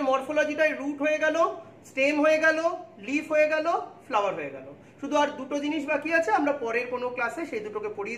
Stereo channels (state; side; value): identical; both; correlation 1.00